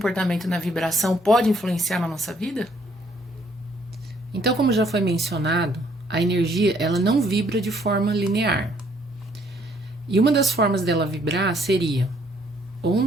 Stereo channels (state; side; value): normal; both; correlation 0.66